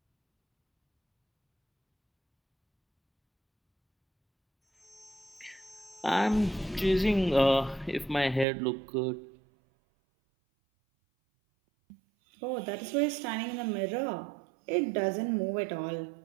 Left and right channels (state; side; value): drops out; left; at 8.5 s